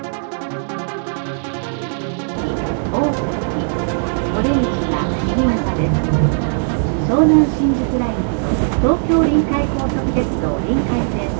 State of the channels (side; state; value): left; silent; 67 dB below the other